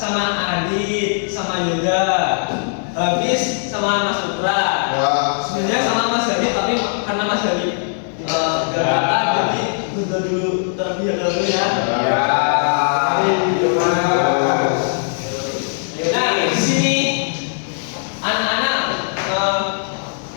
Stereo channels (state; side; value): silent; right; digital silence